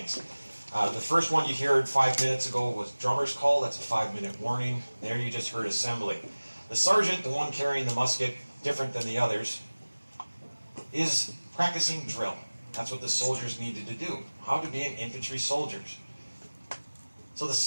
The first one you heard 5 minutes ago was drummer's call. That's a 5-minute warning. There you just heard assembly. The sergeant, the one carrying the musket, different than the others, is practicing drill. That's what the soldiers needed to do. How to be an infantry soldier. So the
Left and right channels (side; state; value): both; inverted; correlation -1.00